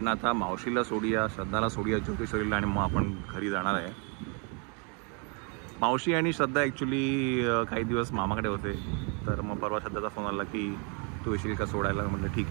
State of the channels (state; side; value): quieter; left; 36.4 dB